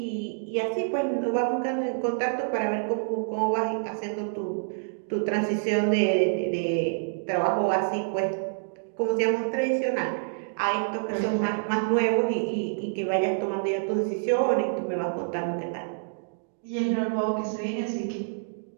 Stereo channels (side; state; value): left; silent; digital silence